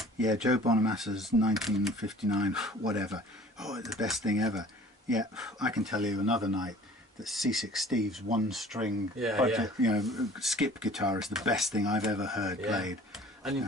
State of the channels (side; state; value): both; normal; correlation 0.49